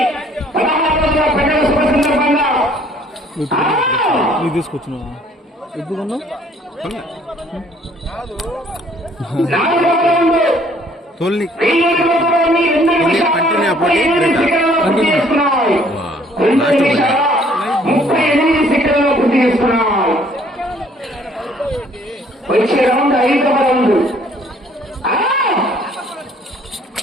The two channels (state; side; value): normal; both; correlation 0.60